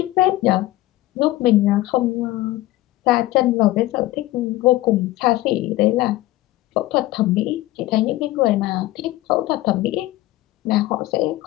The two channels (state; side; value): quieter; right; 17.0 dB